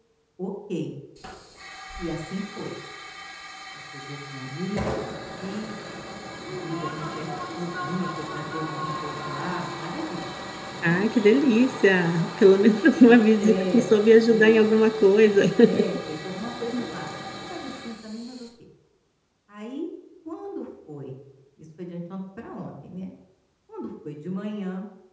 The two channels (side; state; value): both; identical; correlation 1.00